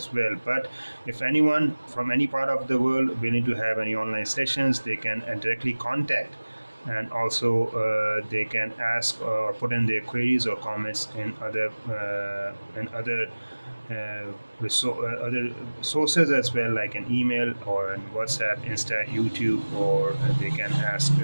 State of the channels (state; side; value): inverted; both; correlation -1.00